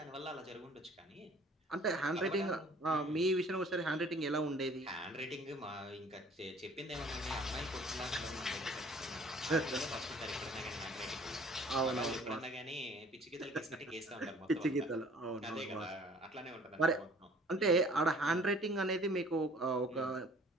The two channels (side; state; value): both; normal; correlation 0.53